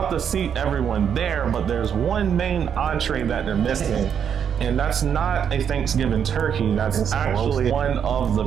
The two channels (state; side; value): quieter; left; 8.0 dB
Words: to seat everyone there, but there's one main entree that they're missing. And that's not a Thanksgiving turkey. That's actually one of